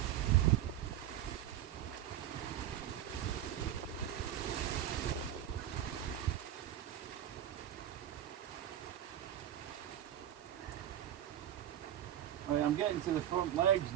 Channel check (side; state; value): left; quieter; 11.5 dB